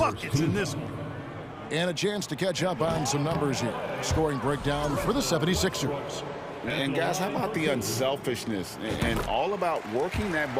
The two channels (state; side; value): identical; both; correlation 1.00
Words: in this one. And a chance to catch up on some numbers here. Scoring breakdown for the 76ers. And guys, how about the unselfishness and all about working that